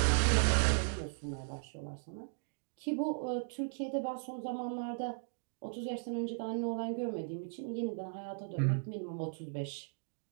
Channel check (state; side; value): silent; left; digital silence